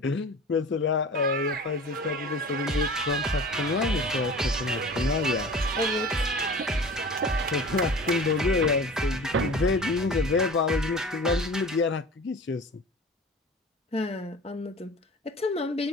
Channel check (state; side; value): normal; both; correlation 0.39